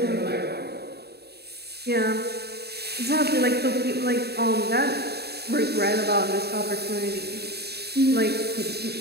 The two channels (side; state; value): left; late; 0.47 ms